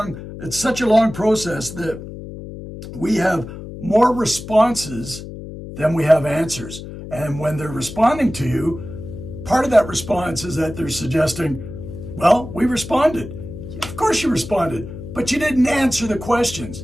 It's such a long process that we have more responses than we have answers. And when they're responding to you, part of that response is that they're suggesting, well, we responded. Of course you responded, but you didn't answer the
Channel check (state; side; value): noise; left; hum, 11 dB below the sound